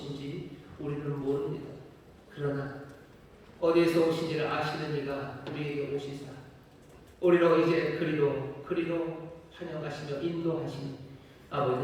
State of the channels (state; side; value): identical; both; correlation 1.00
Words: 우리는 모릅니다. 그러나 어디에서 오신지를 아시는 이가 우리에게 오시사 우리로 이제 그리로 환영하시며 인도하시니 아버지